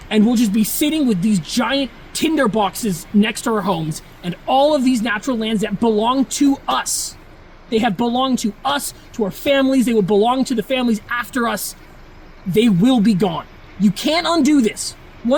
and we'll just be sitting with these giant tinder boxes next to our homes, and all of these natural lands that belong to us. They have belonged to us, to our families. They will belong to the families after us. They will be gone. You can't undo this.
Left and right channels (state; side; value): identical; both; correlation 1.00